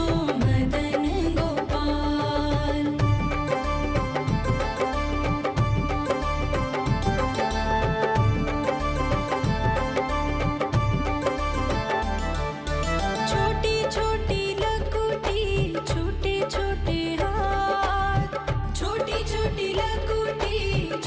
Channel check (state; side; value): identical; both; correlation 1.00